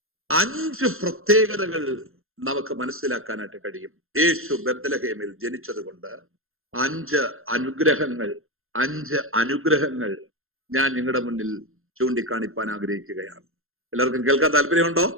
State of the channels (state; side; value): late; left; 0.61 ms